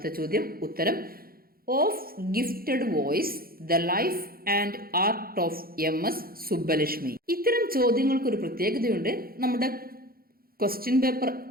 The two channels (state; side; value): late; left; 0.43 ms